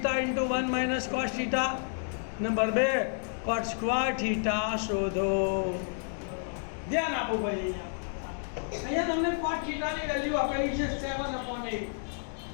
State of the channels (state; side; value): silent; right; 57 dB below the other